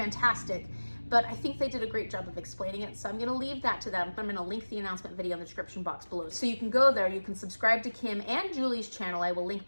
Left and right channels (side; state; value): both; inverted; correlation -1.00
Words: but I think they did a great job of explaining it. So I'm gonna leave that to them. I'm gonna link the announcement video in the description box below. So you can go there, you can subscribe to Kim and Julie's channel. I will link